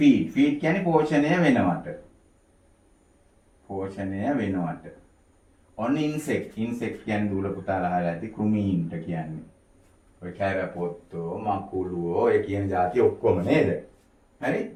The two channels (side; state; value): both; identical; correlation 1.00